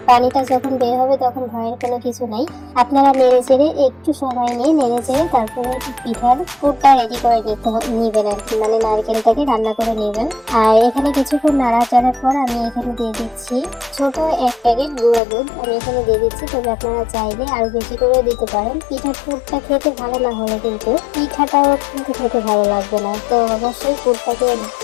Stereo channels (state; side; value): drops out; right; at 15.2 s